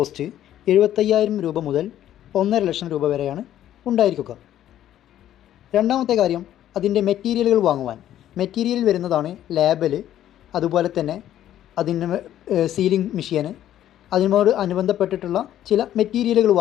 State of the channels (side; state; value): right; quieter; 11.9 dB